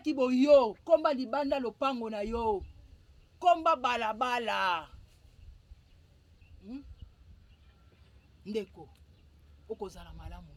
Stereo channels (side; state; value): both; identical; correlation 1.00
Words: komba libanda lopango na yo komba balabala ndeko okozala malamu